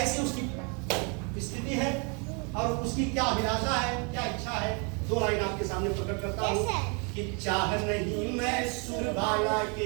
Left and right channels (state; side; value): quieter; left; 34.9 dB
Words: उसकी स्थिति है और उसकी क्या अभिलाषा है, क्या इच्छा है, दो लाइन आपके सामने प्रकट करता हूँ कि चाह नहीं मैं सुरबाला